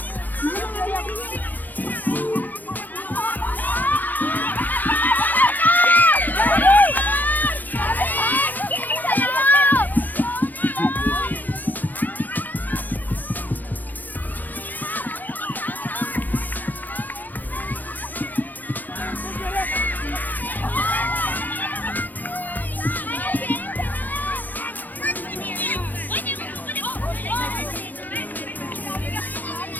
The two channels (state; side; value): late; right; 0.084 ms